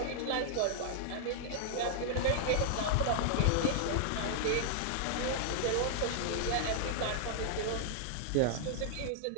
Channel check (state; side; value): different; both; correlation -0.01